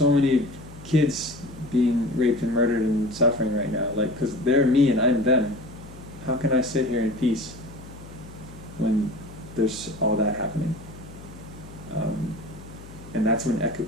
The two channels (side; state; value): left; noise; hum, 17 dB below the sound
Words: many kids being raped and murdered and suffering right now? Because they're me and I'm them. How can I sit here in peace when there's all that happening? And that's when